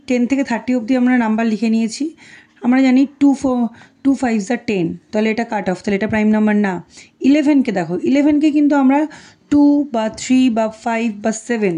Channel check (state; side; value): identical; both; correlation 1.00